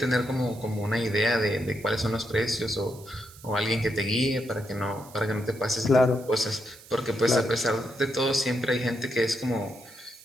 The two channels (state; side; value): noise; right; hiss, 21 dB below the sound